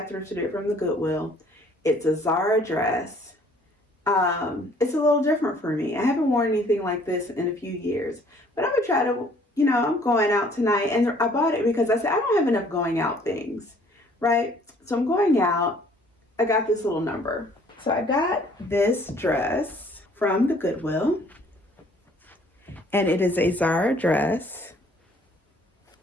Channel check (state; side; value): normal; both; correlation 0.58